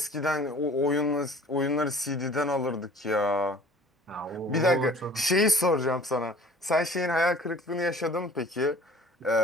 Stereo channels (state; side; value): normal; both; correlation 0.48